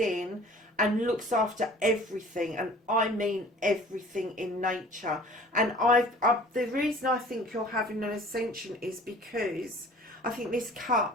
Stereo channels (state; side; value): normal; both; correlation 0.48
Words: and looks after everything, and I mean everything in nature. And the reason I think you're having an ascension is because I think this